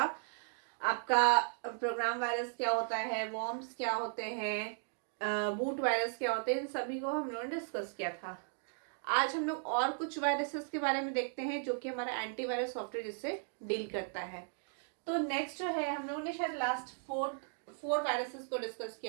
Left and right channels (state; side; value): silent; left; digital silence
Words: आपका प्रोग्राम वायरस क्या होता है, वॉर्म्स क्या होते हैं, बूट वायरस क्या होते हैं, इन सभी को हम लोगों ने डिस्कस किया था. आज हम लोग और कुछ वायरसेस के बारे में देखते हैं जो कि हमारा एंटीवायरस सॉफ्टवेयर जिससे डील करता है. तो नेक्स्ट जो है हम लोगों ने शायद लास्ट फोर वायरसेस को डिस्कस